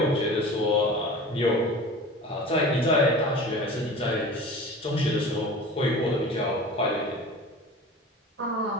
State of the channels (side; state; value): both; normal; correlation 0.37